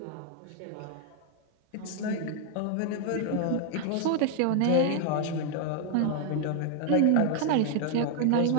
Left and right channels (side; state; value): both; different; correlation 0.00